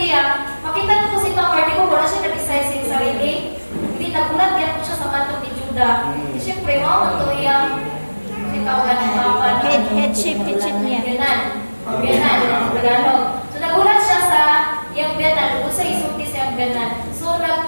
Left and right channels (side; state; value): both; inverted; correlation -1.00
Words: makita ko si Tamar, di ko wala siya nag-decide sa sarili. Hindi nagulat yan ko siya sa kanto ni Judah. Siyempre, mo to yung ikaw ka ng papan. Headship niya. Biyanan, Tagalog. So, nagulat siya sa yung biyanan, kung sa isulti sa yung biyanan. So,